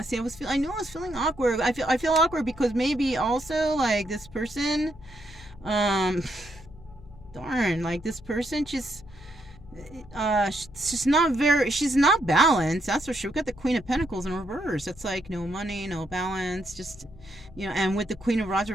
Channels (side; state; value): left; noise; hum, 20 dB below the sound